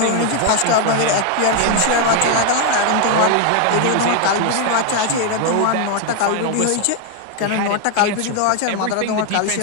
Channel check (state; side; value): different; both; correlation 0.01